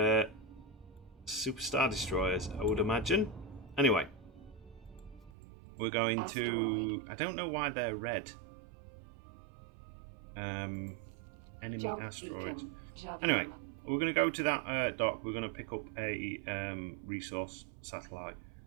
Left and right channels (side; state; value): left; drops out; at 5.3 s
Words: Super Star Destroyers, I would imagine. Anyway, we're going to... I don't know why they're red. Enemy Jump asteroids. beacon. Jump Anyway, in. we're going to go to that dock. We're going to pick up a resource satellite.